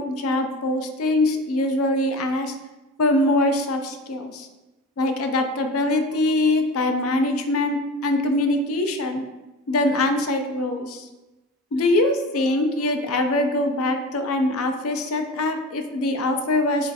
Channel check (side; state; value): both; normal; correlation 0.33